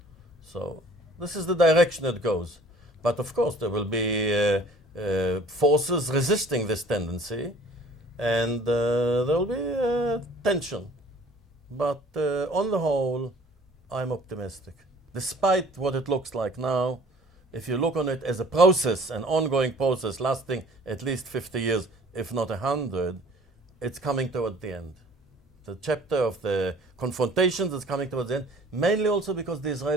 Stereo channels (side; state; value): both; normal; correlation 0.51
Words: So this is the direction it goes. But of course, there will be forces resisting this tendency, and there will be tension. But on the whole, I'm optimistic. Despite what it looks like now, if you look on it as a process, an ongoing process lasting at least 50 years, if not 100, it's coming toward the end. The chapter of the confrontations is coming towards the end, mainly also because the